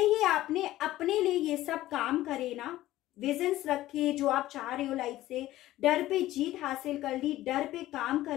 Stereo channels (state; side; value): quieter; right; 15.3 dB